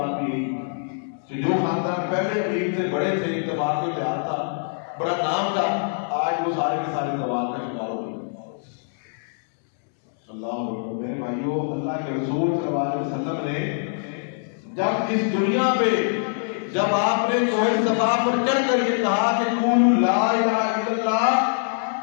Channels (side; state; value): right; silent; digital silence